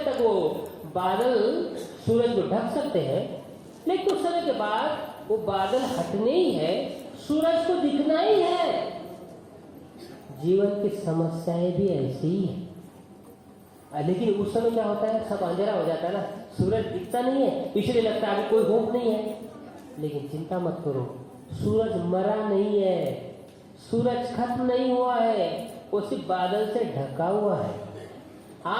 तक वो बादल सूरज को ढक सकते हैं, लेकिन कुछ समय के बाद वो बादल हटने ही है, सूरज को दिखना ही है। जीवन की समस्याएं भी ऐसी ही है। लेकिन उस समय क्या होता है, सब अंधेरा हो जाता है ना, सूरज दिखता नहीं है, इसलिए लगता है अभी कोई होप नहीं है। लेकिन चिंता मत करो, सूरज मरा नहीं है, सूरज खत्म नहीं हुआ है, वो सिर्फ बादल से ढका हुआ है।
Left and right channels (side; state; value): both; identical; correlation 1.00